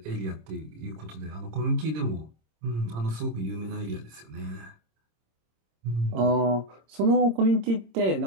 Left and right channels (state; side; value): late; left; 26 ms